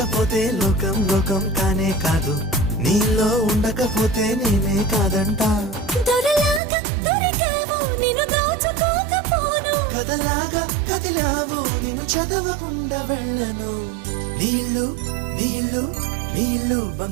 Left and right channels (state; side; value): drops out; left; at 6.6 s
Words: లోకం లోకం కానే కాదు, నీలో ఉండకపోతే నేనే కాదంట. దొరలాగా దొరికావు నిన్ను దోచుకోకపోను, కథలాగా కదిలావు నిన్ను చదవకుండా వెళ్ళను. నీళ్ళు నీళ్ళు నీళ్ళు